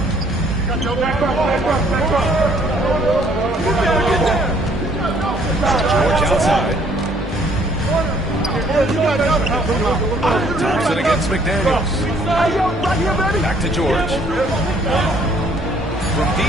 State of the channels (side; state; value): both; normal; correlation 0.62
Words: outside. Thompson against McDaniels. Back to George. From